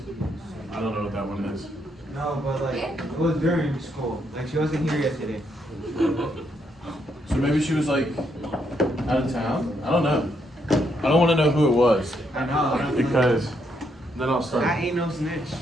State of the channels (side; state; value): both; normal; correlation 0.76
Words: I don't know what that one is. No, but like, it was during school. Like, she wasn't here yesterday. So maybe she was like out of town? I don't know. I don't want to know who it was. I know. Because then I'll start. I ain't no snitch.